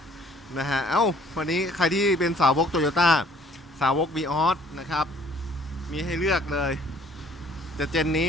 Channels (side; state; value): both; normal; correlation 0.58